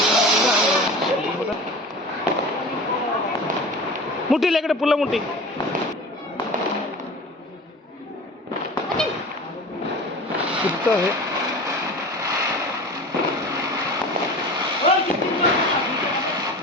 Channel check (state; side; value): normal; both; correlation 0.36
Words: ముట్టి లేకడ పుల్ల ముట్టి. కుత్తా హే.